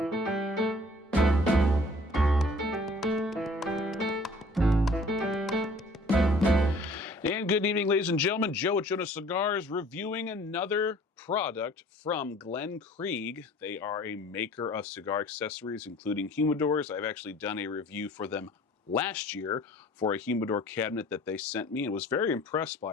And good evening, ladies and gentlemen. Joe at Jonose Cigars reviewing another product from Glencreag. They are a maker of cigar accessories, including humidors. I've actually done a review for them last year for a humidor cabinet that they sent me and was very impressed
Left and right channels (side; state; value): both; normal; correlation 0.52